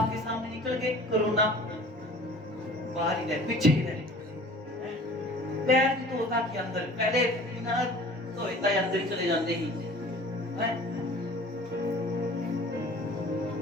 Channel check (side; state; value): both; normal; correlation 0.46